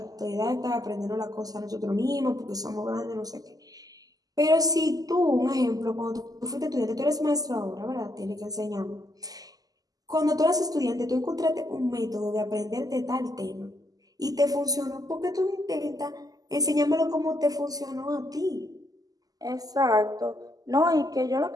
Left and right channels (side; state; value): left; late; 0.17 ms